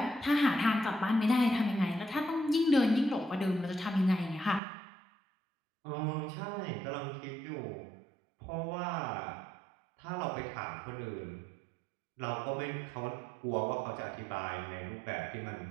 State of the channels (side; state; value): left; drops out; at 4.6 s